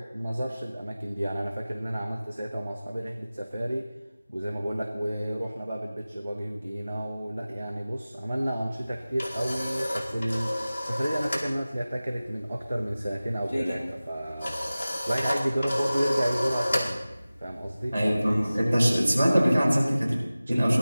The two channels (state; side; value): inverted; both; correlation -0.97